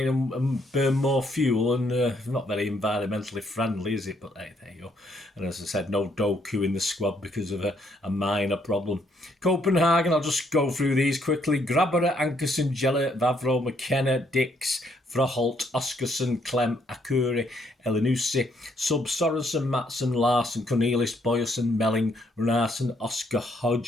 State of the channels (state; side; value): normal; both; correlation 0.71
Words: and burn more fuel, and not very environmentally friendly, is it? But hey, there you go. And as I said, no Doku in the squad because of a minor problem. Copenhagen, I'll just go through these quickly. Grabara, Ankerson, Gellert, Vavro, McKenna, Dix, Froholt, Oscarson, Clem, Akuri, Elinusi, Sub, Sorensen, Matson, Larson, Cornelis, Boyerson, Melling, Runarsson, Oscar